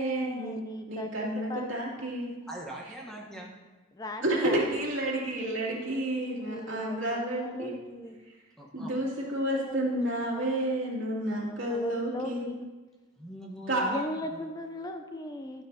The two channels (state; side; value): normal; both; correlation 0.31